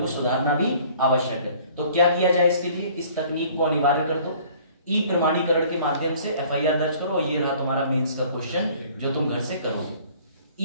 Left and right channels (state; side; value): inverted; both; correlation -0.53